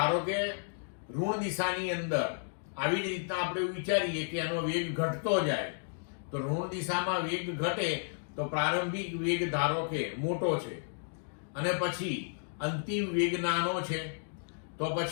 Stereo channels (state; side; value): silent; right; digital silence